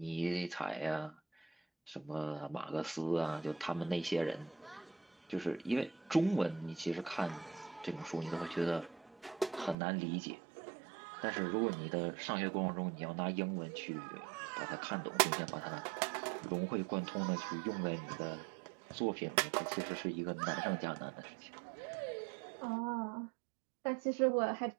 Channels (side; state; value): left; drops out; at 9.8 s